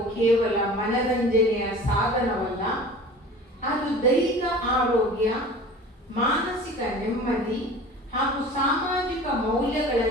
ಕೇವಲ ಮನರಂಜನೆಯ ಸಾಧನವಲ್ಲ, ಅದು ದೈಹಿಕ ಆರೋಗ್ಯ, ಮಾನಸಿಕ ನೆಮ್ಮದಿ ಹಾಗೂ ಸಾಮಾಜಿಕ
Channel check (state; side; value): normal; both; correlation 0.41